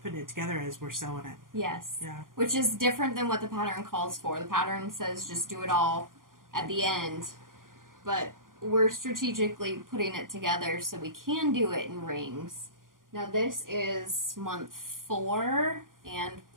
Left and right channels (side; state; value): left; late; 0.90 ms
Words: putting it together as we're sewing it. Yes. Yeah. Which is different than what the pattern calls for. The pattern says just do it all at the end. But we're strategically putting it together so we can do it in rings. Now this is month 4 and